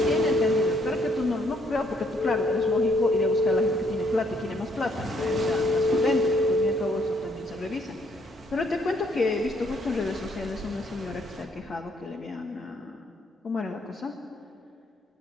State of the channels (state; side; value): normal; both; correlation 0.69